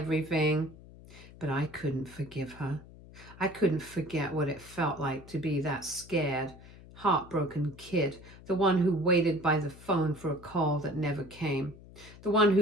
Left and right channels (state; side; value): noise; left; hum, 19 dB below the sound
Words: But I couldn't forgive her. I couldn't forget what it felt like to be that scared, heartbroken kid, the one who waited by the phone for a call that never came, the one